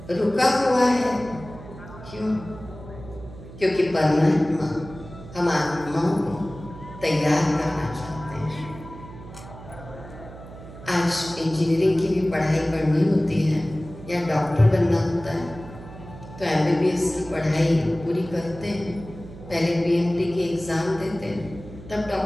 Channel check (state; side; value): noise; right; hum, 16 dB below the sound